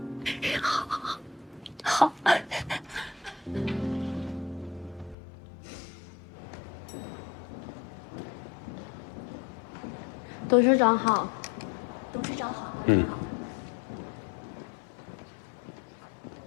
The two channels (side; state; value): right; drops out; at 5.2 s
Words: 好。董事长好。董事长好。